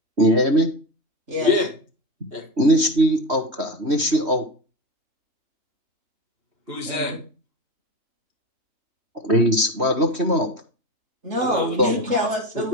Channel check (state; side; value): late; left; 3.1 ms